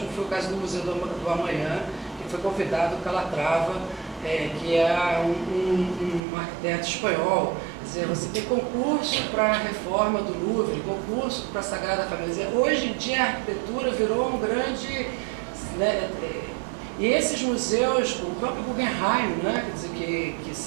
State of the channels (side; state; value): left; drops out; at 6.2 s